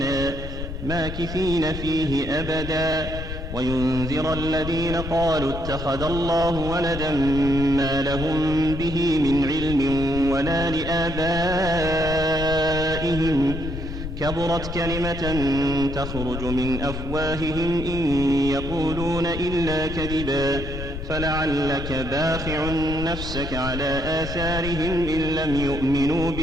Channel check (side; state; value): left; noise; rumble, 7 dB below the sound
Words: ماكثين فيه أبدا وينذر الذين قالوا اتخذ الله ولدا ما لهم به من علم ولا لآبائهم كبرت كلمة تخرج من أفواههم إن يقولون إلا كذبا فلعلك باخع نفسك على آثارهم إن لم يؤمنوا